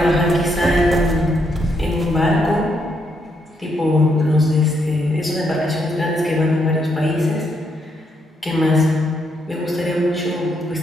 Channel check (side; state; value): both; normal; correlation 0.77